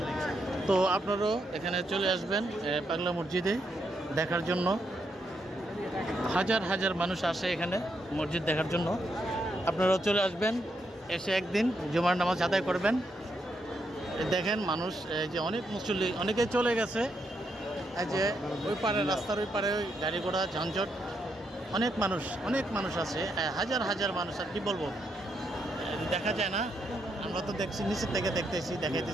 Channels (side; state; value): both; normal; correlation 0.79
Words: তো আপনারাও এখানে চলে আসবেন পাগলা মসজিদে দেখার জন্য। হাজার হাজার মানুষ আসে এখানে মসজিদ দেখার জন্য। আপনারাও চলে আসবেন, এসে একদিন জুমার নামাজ আদায় করবেন। দেখেন মানুষ, যে অনেক মুসল্লি, অনেকে চলে গেছে। এই যে ওই পারে, রাস্তার ওই পারে ওই গাড়ি ঘোড়া ঝঞ্ঝট, অনেক মানুষ আছে, হাজার হাজার মানুষ। আর কি বলবো, দেখা যায় না, আমরা তো দেখছি, নিচের থেকে